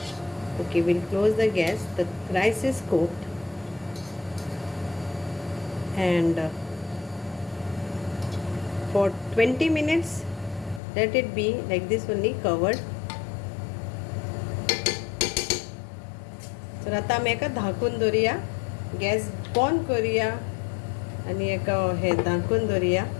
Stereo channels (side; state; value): right; drops out; at 10.8 s